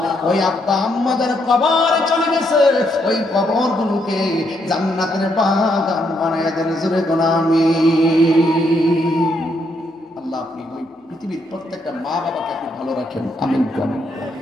ওই আব্বা আম্মা যার কবরে চলে গেছে, ওই কবর গুলোকে জান্নাতের বাগান বানায় দেন। জোরে কোন আমিন। আল্লাহ আপনি ওই পৃথিবীর প্রত্যেকটা মা বাবাকে আপনি ভালো রাখেন, আমিন।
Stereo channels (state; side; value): normal; both; correlation 0.76